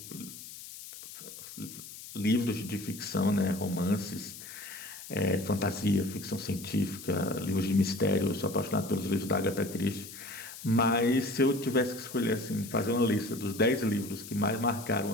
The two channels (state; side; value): noise; left; hiss, 13 dB below the sound